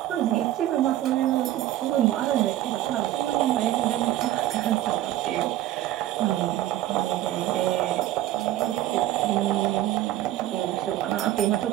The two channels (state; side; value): quieter; left; 13.9 dB